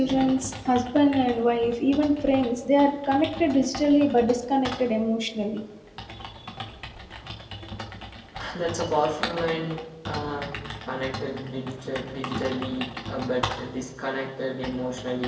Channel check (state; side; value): identical; both; correlation 1.00